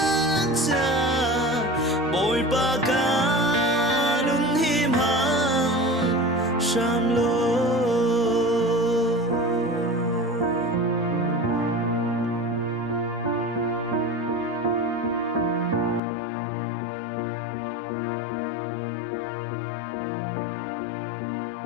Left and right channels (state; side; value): drops out; right; at 16.0 s